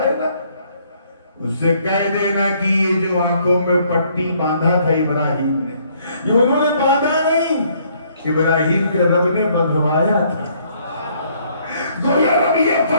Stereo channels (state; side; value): inverted; both; correlation -0.66